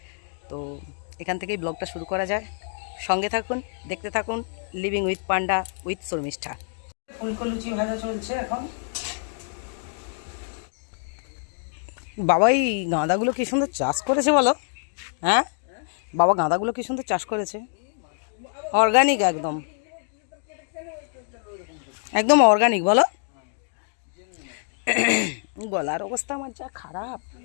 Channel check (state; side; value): silent; right; 61 dB below the other